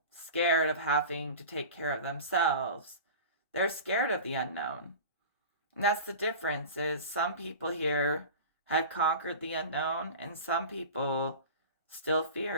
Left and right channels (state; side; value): inverted; both; correlation -0.33